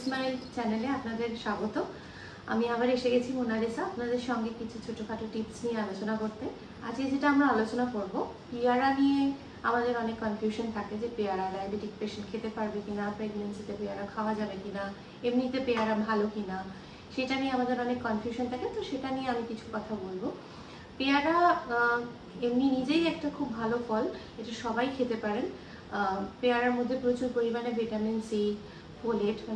smile চ্যানেলে আপনাদের স্বাগত। আমি আবার এসে গেছি মোনালিসা, আপনাদের সঙ্গে কিছু ছোটোখাটো টিপস নিয়ে আলোচনা করতে। আজকে যেটা আমরা আলোচনা করব, পেয়ারা নিয়ে আমাদের অনেক কনফিউশন থাকে যে পেয়ারা ডায়াবেটিক পেশেন্ট খেতে পারবে কিনা, প্রেগনেন্সিতে পেয়ারা খাওয়া যাবে কিনা, এমনিতে পেয়ারা ভালো কিনা, সেটা নিয়ে আমাদের অনেক কনফিউশন থাকে। তো সেটা নিয়ে আমি কিছু কথা বলবো। পেয়ারা এমনি নিজেই একটা খুব ভালো ফল, এটা সবাই খেতে পারেন। পেয়ারার মধ্যে প্রচুর পরিমাণে ভিটামিন সি, ফোলেট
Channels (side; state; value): both; identical; correlation 1.00